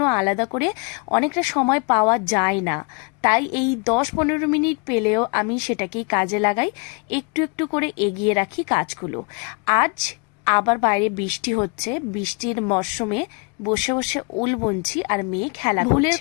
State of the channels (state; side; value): quieter; right; 32.4 dB